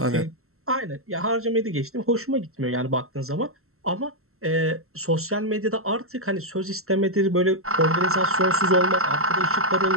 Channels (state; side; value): late; left; 0.63 ms